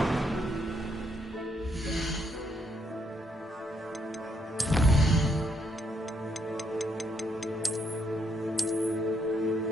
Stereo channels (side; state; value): both; normal; correlation 0.74